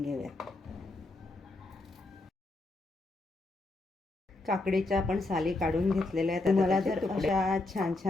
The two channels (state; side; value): quieter; right; 3.0 dB